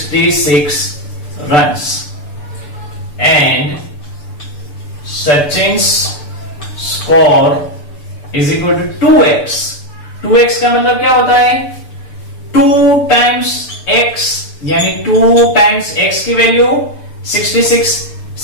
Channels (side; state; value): right; late; 6.8 ms